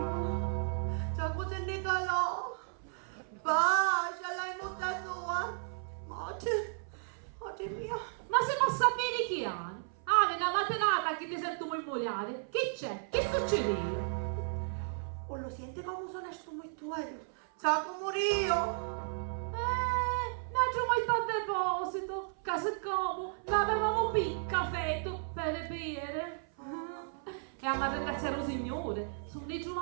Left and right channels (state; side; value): silent; left; 55 dB below the other